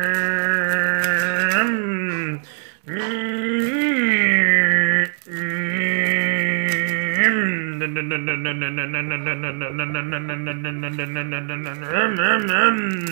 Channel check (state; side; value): silent; left; digital silence